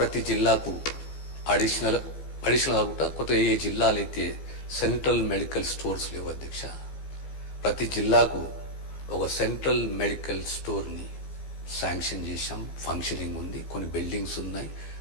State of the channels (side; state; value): right; late; 15 ms